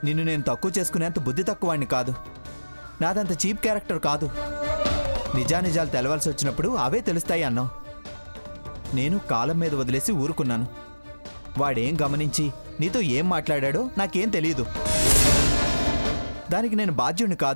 నిన్ను నేను తక్కువ చేసుకునేంత బుద్ధి తక్కువాడిని కాదు. నాదంత చీప్ క్యారెక్టర్ కాదు. నిజానిజాలు తెలవాల్సి వచ్చినప్పుడు అవే తెలుస్తాయి అన్నావు. నేను కాలం మీద వదిలేసి ఊరుకున్నాను. వాడేం గమనించి నీతో ఏం మాట్లాడాడో నాకేం తెలియదు. దానికి నేను బాధ్యుణ్ణి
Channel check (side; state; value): both; inverted; correlation -1.00